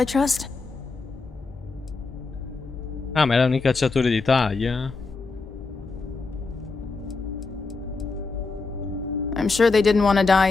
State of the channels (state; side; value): quieter; right; 4.1 dB